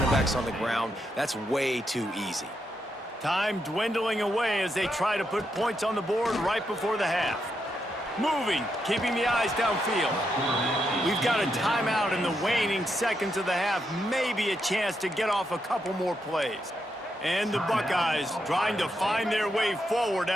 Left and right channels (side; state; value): both; normal; correlation 0.82